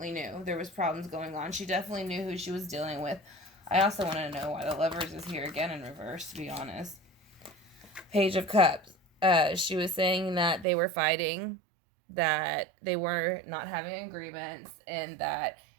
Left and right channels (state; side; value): drops out; left; at 10.7 s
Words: knew there was problems going on. She definitely knew who she was dealing with. I also want to know why the Lovers is here again in reverse, to be honest. Page of Cups. She was saying that they were fighting, that they were not having agreements, and that